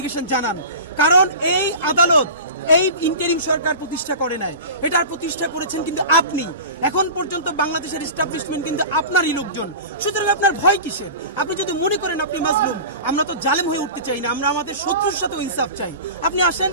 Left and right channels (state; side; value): inverted; both; correlation -0.33